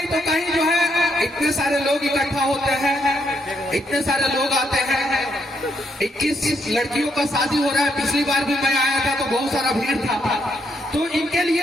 तो कहीं जो है इतने सारे लोग इकट्ठा होते हैं, इतने सारे लोग आते हैं। 21 लड़कियों का शादी हो रहा है, पिछली बार भी मैं आया था तो बहुत सारा भीड़ था। तो इनके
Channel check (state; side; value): normal; both; correlation 0.76